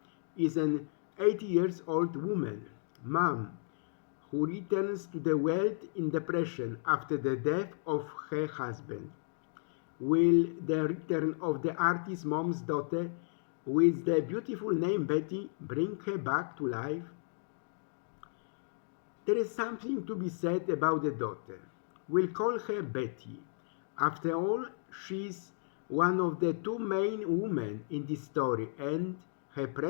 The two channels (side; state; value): right; silent; digital silence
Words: is an 80-year-old woman, Mom, who returns to the world in depression after the death of her husband. Will the return of the artist mom's daughter with the beautiful name Betty bring her back to life? There is something to be said about the daughter. We'll call her Betty. After all, she's one of the two main women in this story, and her